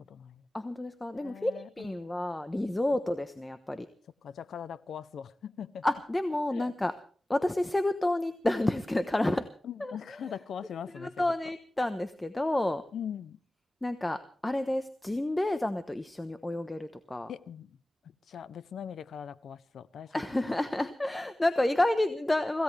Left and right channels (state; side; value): normal; both; correlation 0.97